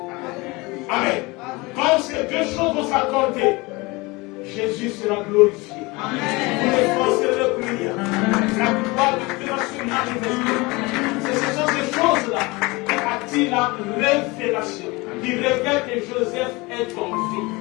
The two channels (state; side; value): quieter; right; 24.2 dB